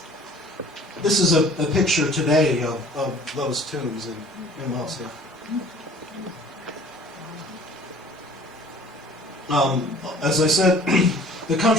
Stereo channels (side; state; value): both; normal; correlation 0.49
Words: This is a picture today of those tombs in Amasya. As I said, the